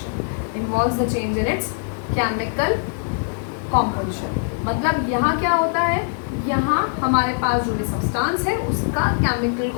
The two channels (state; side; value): silent; right; digital silence